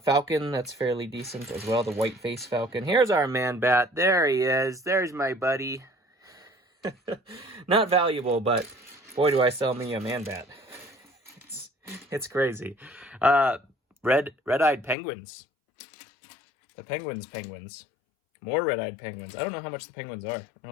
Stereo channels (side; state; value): right; drops out; at 15.0 s